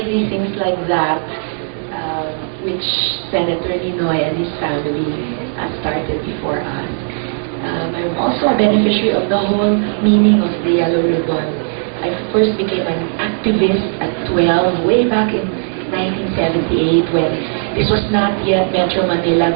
things like that, which Senator Ninoy and his family started before us. I'm also a beneficiary of the whole meaning of the Yellow Ribbon. I first became an activist at 12, way back in 1978, when this was not yet Metro Manila,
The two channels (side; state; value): left; silent; 59 dB below the other